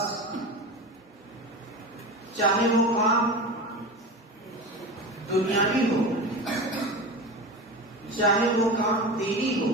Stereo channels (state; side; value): normal; both; correlation 0.28